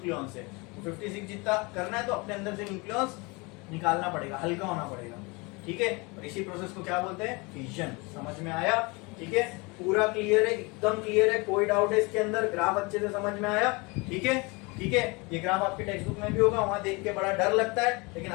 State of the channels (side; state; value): right; quieter; 27.2 dB